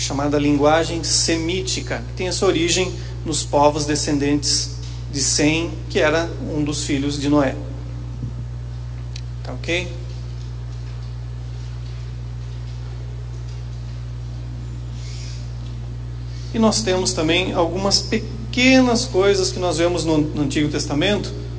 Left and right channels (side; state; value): both; identical; correlation 1.00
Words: linguagem semítica, que tem a sua origem nos povos descendentes de Sem, que era um dos filhos de Noé. Tá ok? E nós temos também algumas pequenas coisas que nós vemos no Antigo Testamento,